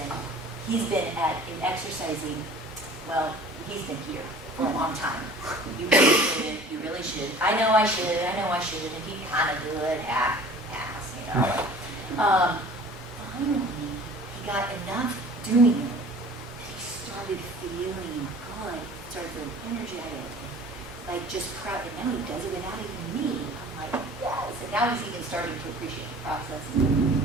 he's been in exercising, well, he's been here for a long time. You really shouldn't, you really should. I know I should, and he kind of do it half-ass, you know. Finally, he got enough doing it that he started feeling good, started feeling energetic, like just proud, and now he does it without even me. I'm like, yes, and now he's even starting to appreciate the process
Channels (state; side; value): normal; both; correlation 0.46